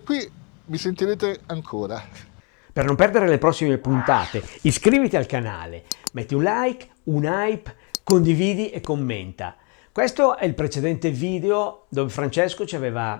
mi sentirete ancora. Per non perdere le prossime puntate, iscriviti al canale, metti un like, un hype, condividi e commenta. Questo è il precedente video dove Francesco ci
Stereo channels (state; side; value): quieter; right; 34.5 dB